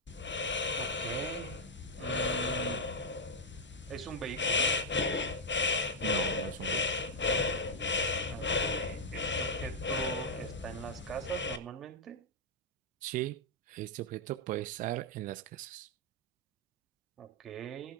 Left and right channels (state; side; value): normal; both; correlation -0.03